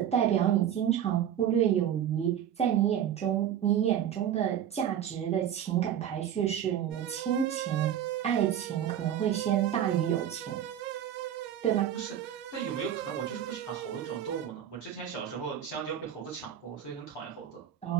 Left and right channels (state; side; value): quieter; left; 10.1 dB